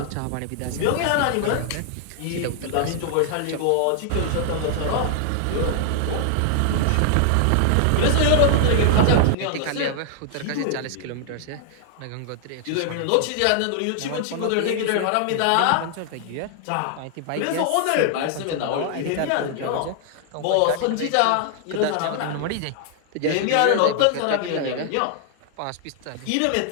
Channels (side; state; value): both; different; correlation 0.00